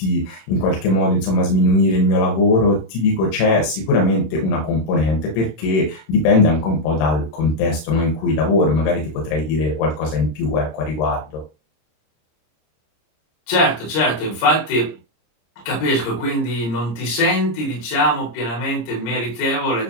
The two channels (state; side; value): late; right; 26 ms